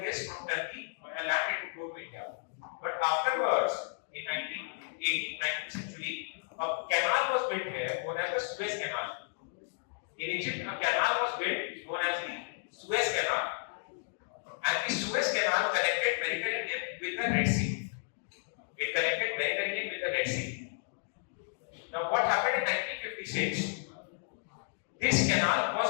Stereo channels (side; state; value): right; silent; digital silence